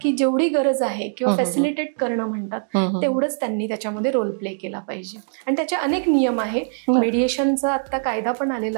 की जेवढी गरज आहे किंवा फॅसिलिटेट करणं म्हणतात तेवढंच त्यांनी त्याच्यामध्ये रोल प्ले केला पाहिजे. आणि त्याचे अनेक नियम आहे. मेडिएशनचा आता कायदा पण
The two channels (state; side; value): silent; left; digital silence